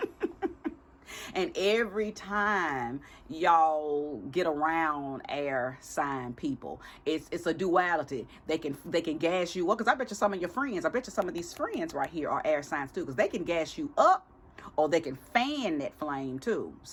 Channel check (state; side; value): identical; both; correlation 1.00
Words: And every time y'all get around air sign people, it's a duality. They can gas you up, because I bet you some of your friends, I bet you some of these friends right here are air signs too, because they can gas you up or they can fan that flame too.